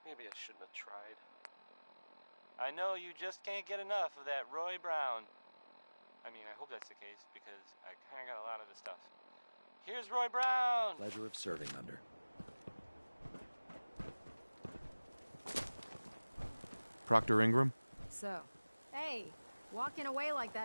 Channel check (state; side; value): inverted; both; correlation -1.00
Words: I shouldn't have tried. I know you just can't get enough of that Roy Brown. I mean, I hope that's the case, because I kind of got a lot of the stuff. Here's Roy Brown! Pleasure of serving under. Proctor Ingram? So, hey, walking away like